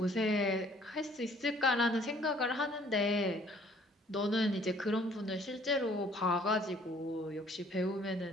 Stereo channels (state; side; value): normal; both; correlation 0.59